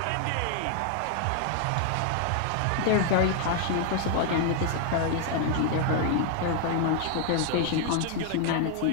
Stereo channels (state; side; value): different; both; correlation 0.00